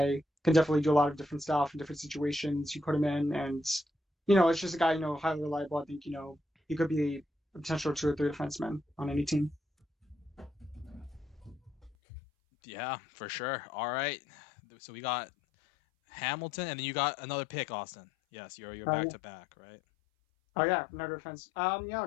Can definitely do a lot of different stuff in different situations you put him in, and it's just a guy, highly reliable. I think, he could be a potential 2 or 3 defenseman on any team. Yeah, for sure. All right. So we got Hamilton, and then you got another pick, Austin. Yes, you're back Yeah. to back, right? Oh yeah, another defense. Yeah,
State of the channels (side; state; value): right; drops out; at 11.9 s